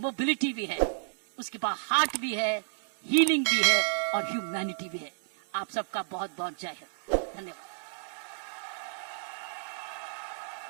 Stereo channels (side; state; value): left; silent; 57 dB below the other